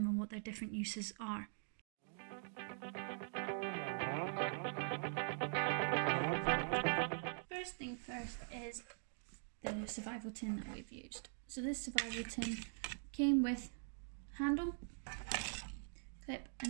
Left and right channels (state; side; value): silent; left; digital silence